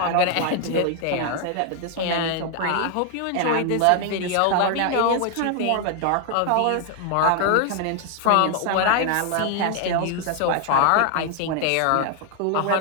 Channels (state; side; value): different; both; correlation 0.00